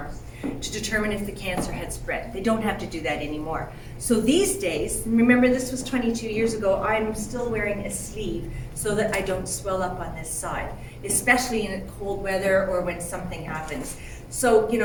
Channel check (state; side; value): identical; both; correlation 1.00